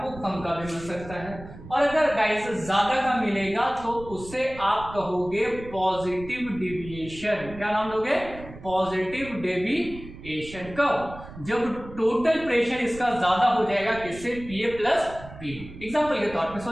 कम का भी मिल सकता है, और अगर गाइस ज्यादा का मिलेगा तो उससे आप कहोगे पॉजिटिव डेविएशन। क्या नाम दोगे, पॉजिटिव डेविएशन। कब, जब टोटल प्रेशर इसका ज्यादा हो जाएगा किससे, PA प्लस PB। एग्जाम्पल के तौर पे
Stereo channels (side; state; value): right; noise; rumble, 15 dB below the sound